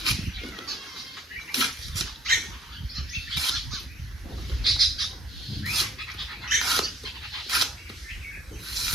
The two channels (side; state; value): both; normal; correlation 0.58